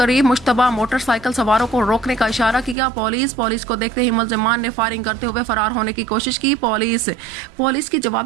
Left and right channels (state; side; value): drops out; left; at 2.8 s